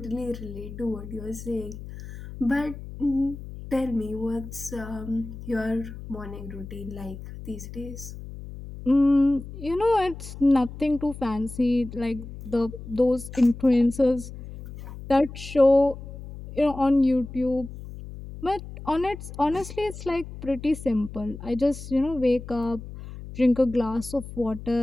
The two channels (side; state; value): left; noise; hum, 12 dB below the sound